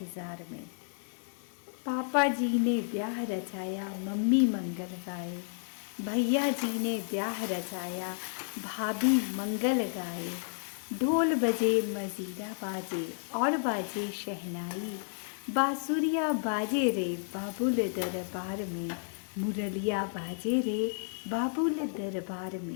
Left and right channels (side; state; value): right; silent; digital silence